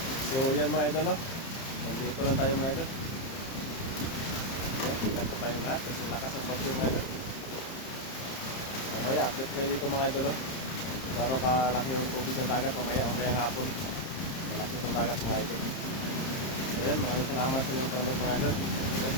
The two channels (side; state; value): right; late; 30 ms